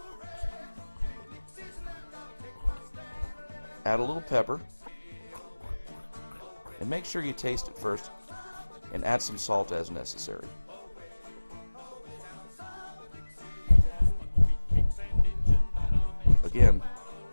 Add a little pepper, and make sure you taste it first, and add some salt as necessary. Again,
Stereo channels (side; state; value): both; inverted; correlation -1.00